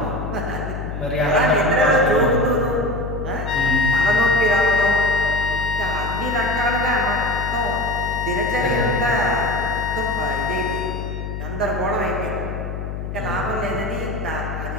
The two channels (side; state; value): left; noise; hum, 6 dB below the sound